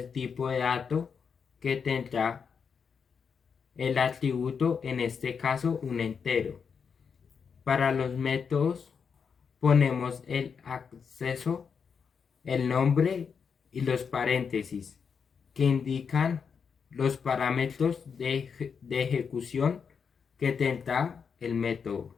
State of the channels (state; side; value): quieter; right; 6.2 dB